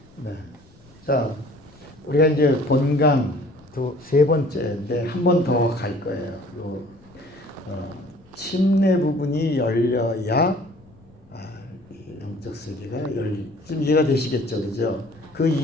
네. 자, 우리가 이제 본강 세 번째인데 한 번 더 갈 거예요. 침례 부분이 열려야 영적 세계가 좀 이해가 되시겠죠, 그죠? 그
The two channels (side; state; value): left; noise; rumble, 27 dB below the sound